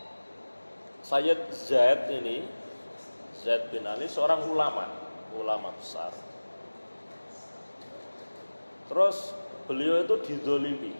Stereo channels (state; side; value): inverted; both; correlation -1.00